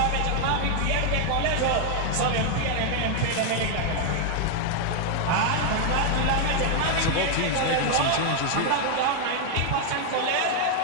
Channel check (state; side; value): different; both; correlation 0.00